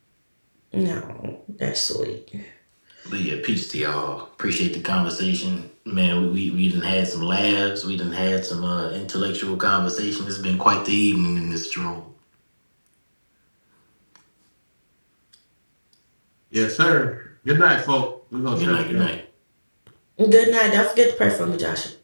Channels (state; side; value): inverted; both; correlation -1.00